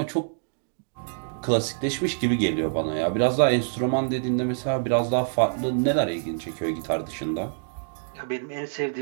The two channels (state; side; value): silent; left; digital silence